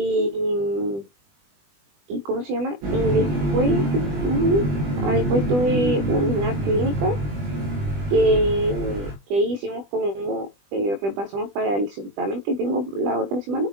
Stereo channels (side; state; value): left; late; 20 ms